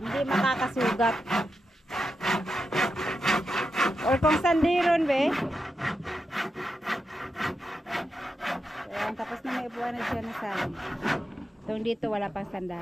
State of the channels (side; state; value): both; normal; correlation 0.87